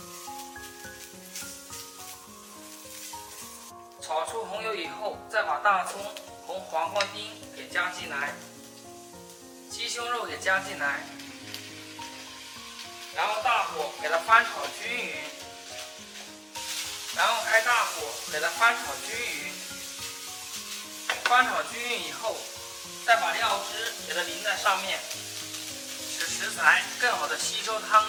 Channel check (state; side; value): identical; both; correlation 1.00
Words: 炒出红油以后，再把大葱、红黄瓜丁给加进来，鸡胸肉也加进来，然后大火给它翻炒均匀，然后开大火给它翻炒均匀。翻炒均匀以后，再把料汁给它淋在上面，使食材更好的吸收汤